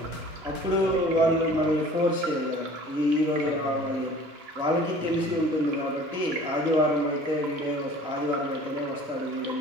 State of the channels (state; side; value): normal; both; correlation 0.47